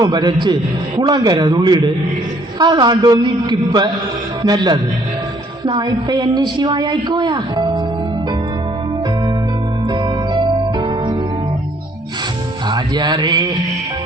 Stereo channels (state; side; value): normal; both; correlation 0.63